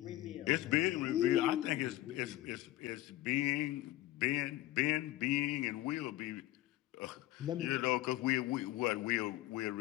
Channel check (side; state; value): right; quieter; 15.8 dB